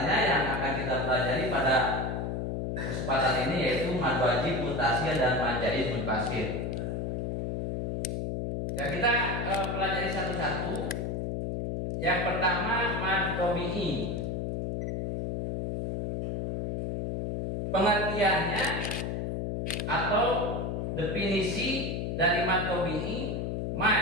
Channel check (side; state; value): left; noise; hum, 2 dB below the sound